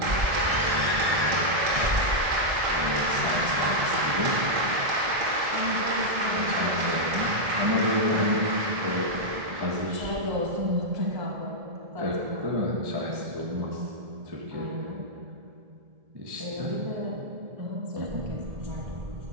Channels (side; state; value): left; late; 1.7 ms